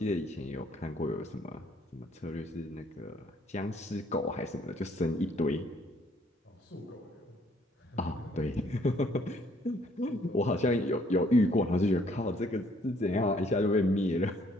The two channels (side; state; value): both; normal; correlation 0.64